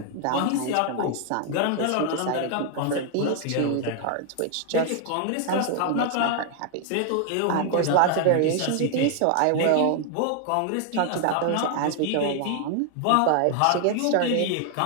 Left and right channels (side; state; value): both; different; correlation 0.00